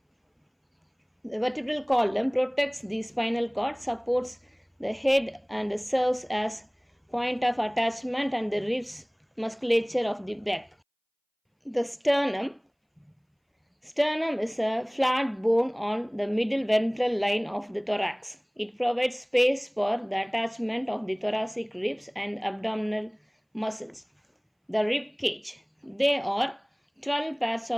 The vertebral column protects the spinal cord, supports the head and serves as point of attachment and the ribs musculature of the back. The sternum. Sternum is a flat bone on the middle ventral line of the thorax. It provides space for the attachment of the thoracic ribs and abdominal muscles. The rib cage. There are 12 pairs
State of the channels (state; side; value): identical; both; correlation 1.00